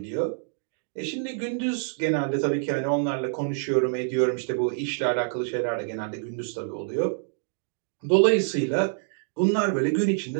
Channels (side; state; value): left; silent; digital silence